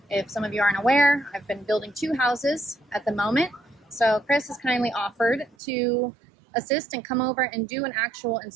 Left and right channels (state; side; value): drops out; left; at 5.6 s